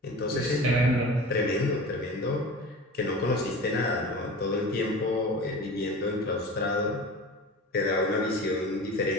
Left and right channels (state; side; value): normal; both; correlation 0.35